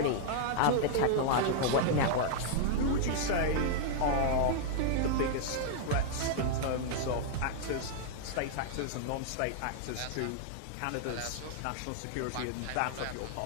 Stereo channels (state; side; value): different; both; correlation -0.01